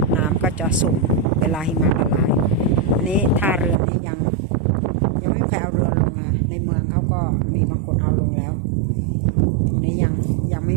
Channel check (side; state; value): left; drops out; at 3.8 s